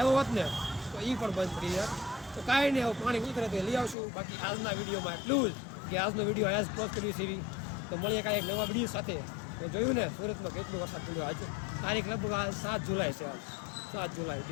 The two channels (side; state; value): right; drops out; at 4.0 s